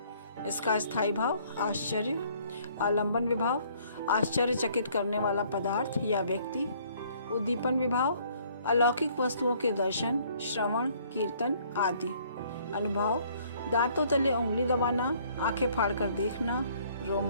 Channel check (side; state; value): both; inverted; correlation -0.61